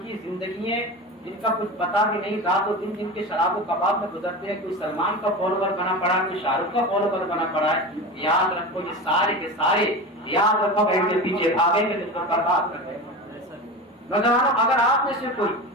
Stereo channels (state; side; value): normal; both; correlation 0.27